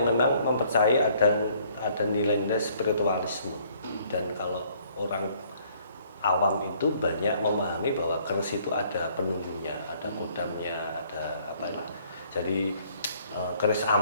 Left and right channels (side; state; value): both; inverted; correlation -0.61